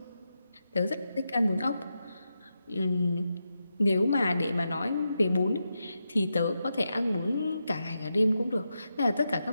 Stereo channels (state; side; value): inverted; both; correlation -0.87